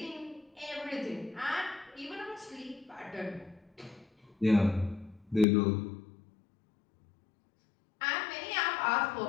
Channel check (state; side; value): drops out; right; at 5.5 s